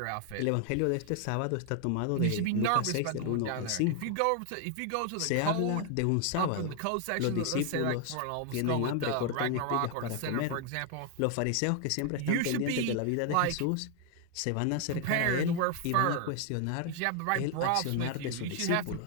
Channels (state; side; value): different; both; correlation 0.00